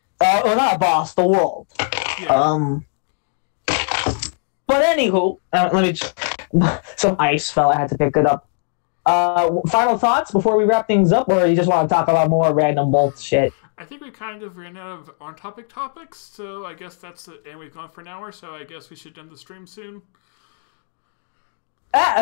Well, not a boss, the world. Yeah. But anywho, let me just... Some ice fell, I had to pick it up. Final thoughts before we wrap things up, or you just want to talk about more random bullshit? I think we kind of ran out of on-topic topics, so I guess that's it. And we've gone for an hour, so I guess we should end the stream soon.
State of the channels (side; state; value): right; silent; digital silence